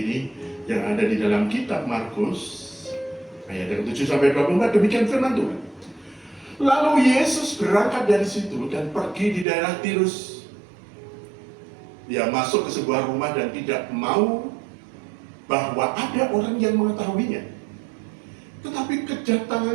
yang ada di dalam Kitab Markus ayat yang 7 sampai 24. Demikian firman Tuhan. Lalu Yesus berangkat dari situ dan pergi di daerah Tirus. Dia masuk ke sebuah rumah dan tidak mau bahwa ada orang yang mengetahuinya. Tetapi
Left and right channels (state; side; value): drops out; left; at 9.5 s